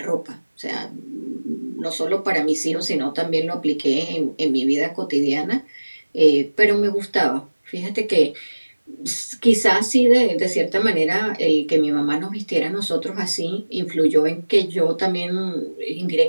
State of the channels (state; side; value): inverted; both; correlation -1.00